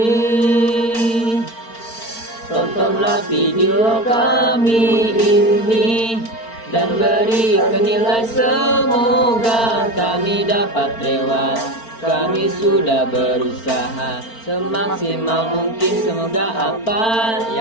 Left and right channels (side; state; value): right; late; 4.4 ms